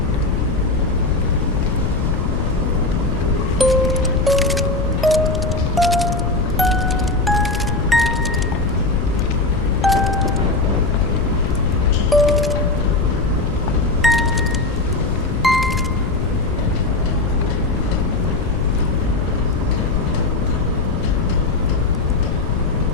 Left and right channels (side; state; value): left; noise; rumble, 1 dB below the sound